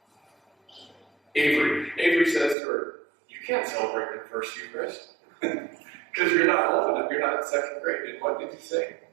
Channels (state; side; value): drops out; left; at 2.6 s